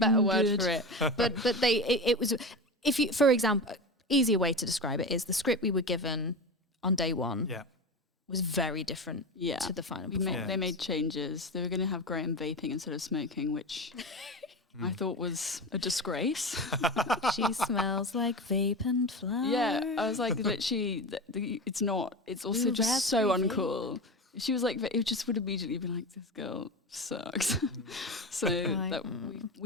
word for it. But it was, if you, for example, easier way to describe it is the script we were given on day one was very different to the final performance. They made changes. They were going to have Graham vaping instead of smoking, which I thought was a disgrace. She smells like vape and flower. Yeah, I was like, literally, it's not. It's also Ooh, just so raspberry uncool. She was like, it just would immediately be like, this girl sucks. So that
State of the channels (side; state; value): both; normal; correlation 0.25